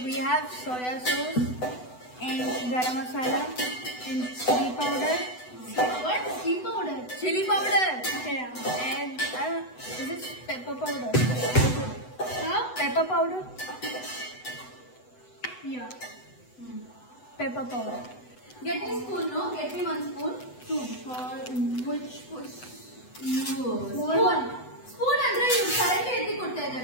we have soya sauce and garam masala and chili powder. What? Chili powder? Chili powder. Yeah. And is it pepper powder? Huh? Pepper powder? Yeah. Pepper powder. Get me spoon, no? Get me one spoon. Two. For which was? Spoon. Spoon andre you correctly etti kotta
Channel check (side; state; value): right; late; 8.0 ms